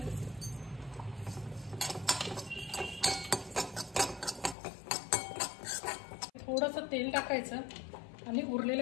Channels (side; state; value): right; drops out; at 4.5 s